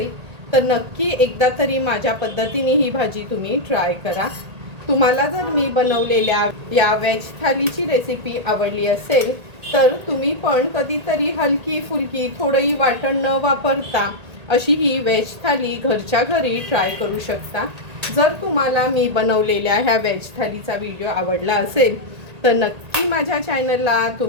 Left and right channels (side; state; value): left; late; 1.8 ms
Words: तर नक्की एकदा तरी माझ्या पद्धतीने ही भाजी तुम्ही ट्राय करा. तुम्हाला जर मी बनवलेल्या या व्हेज थालीची रेसिपी आवडली असेल तर तुम्ही पण कधीतरी हलकी फुलकी थोडंही वाटण न वापरता अशी ही व्हेज थाली घरच्या घरी ट्राय करू शकता. जर तुम्हाला मी बनवलेल्या ह्या व्हेज थालीचा व्हिडिओ आवडला असेल तर नक्की माझ्या चॅनलला